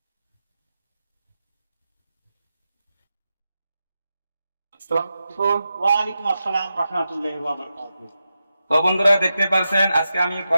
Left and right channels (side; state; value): both; inverted; correlation -0.90